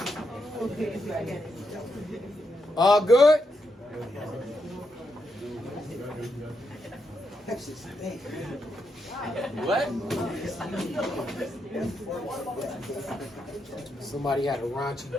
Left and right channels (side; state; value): both; normal; correlation 0.81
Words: Okay, I get it. All good? What? Somebody had a raunchy